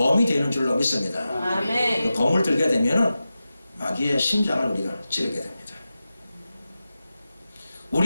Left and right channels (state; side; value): inverted; both; correlation -0.93